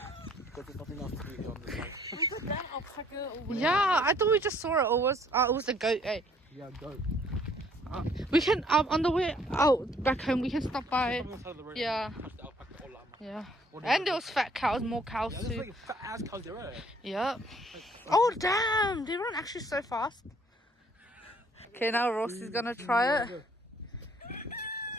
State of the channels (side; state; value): both; normal; correlation 0.61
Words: because there's nothing else to do here on this side. Yeah, I thought we just saw it. Or it was a goat. Hey. Yeah, go. We can on the way out back home. We can stop by. On the side of the road. Yeah. Touch the alpaca or llama. Yeah. Or And there was fat cows, more cows yeah, there's too. like fat ass cows there, right? Yep. Oh damn! They run actually so fast. Okay, now Rossi's gonna try it.